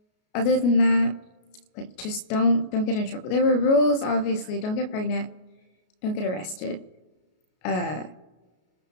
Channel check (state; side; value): late; right; 33 ms